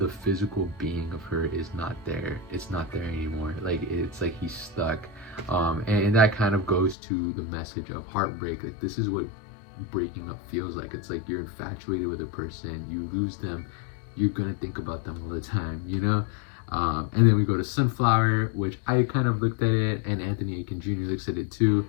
physical being of her is not there. It's not there anymore. Like, it's like he's stuck. And that kind of goes to the message of heartbreak. Like, this is what breaking up feels like. It's like you're infatuated with a person, you lose them, you're gonna think about them all the time, and then we go to Sunflower, which I kind of looked at it, and Anthony Aiken Jr. looks at it too.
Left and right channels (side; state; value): right; drops out; at 7.0 s